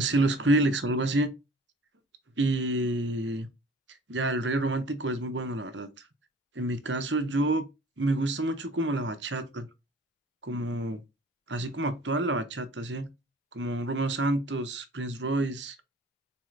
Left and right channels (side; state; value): both; normal; correlation 0.49